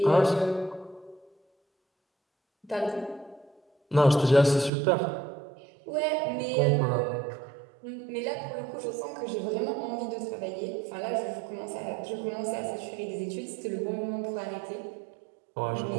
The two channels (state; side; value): drops out; left; at 4.7 s